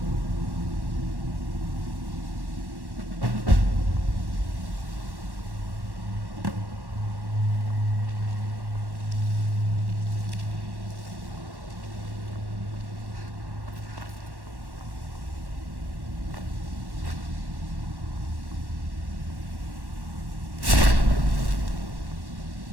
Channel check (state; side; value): late; left; 1.1 ms